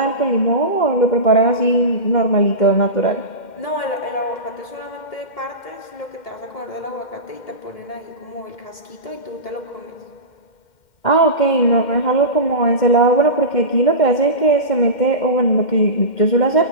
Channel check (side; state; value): right; late; 2.1 ms